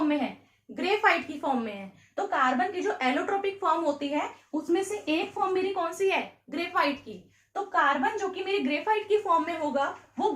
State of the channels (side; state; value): both; identical; correlation 1.00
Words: में है, ग्रेफाइट की फॉर्म में है। तो कार्बन की जो एलोट्रोपिक फॉर्म होती है उसमें से एक फॉर्म मेरी कौन सी है, ग्रेफाइट की। तो कार्बन जो कि मेरी ग्रेफाइट की फॉर्म में होगा वो